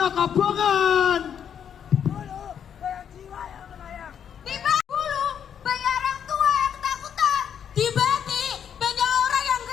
kabongan. Tiba dulu, banyak orang tua yang ketakutan. Tiba-tiba banyak orang yang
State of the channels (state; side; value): quieter; right; 8.4 dB